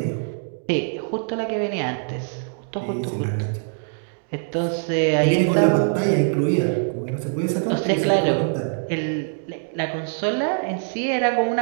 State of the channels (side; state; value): left; silent; digital silence